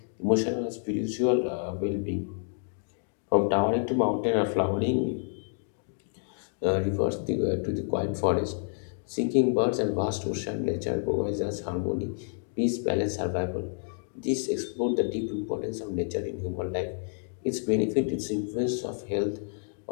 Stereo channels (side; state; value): right; silent; digital silence